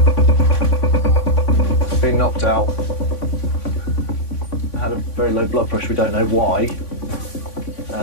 Been knocked out. Had a very low blood pressure. We don't know why.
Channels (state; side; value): late; right; 3.5 ms